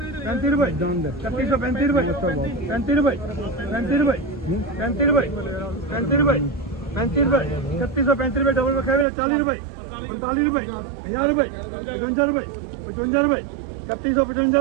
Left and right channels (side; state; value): left; drops out; at 9.1 s